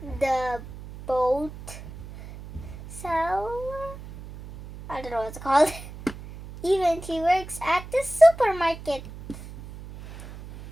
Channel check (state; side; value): noise; right; hum, 14 dB below the sound